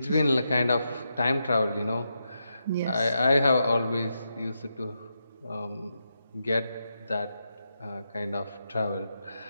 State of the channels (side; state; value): both; inverted; correlation -0.85